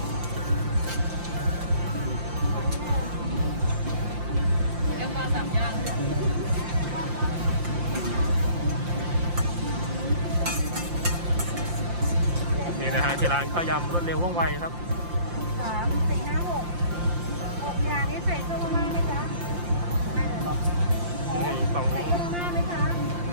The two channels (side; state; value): left; late; 5.7 ms